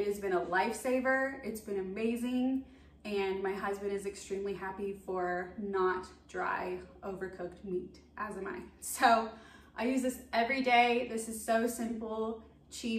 has been a lifesaver. It's been amazing. And my husband is extremely happy for not dry, overcooked meat, as am I. So I use this every day. This is so simple,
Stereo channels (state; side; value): identical; both; correlation 1.00